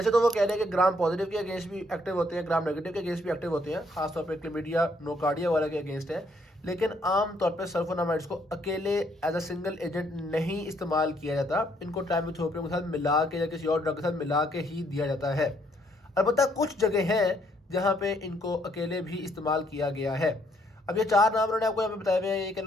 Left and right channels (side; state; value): both; normal; correlation 0.69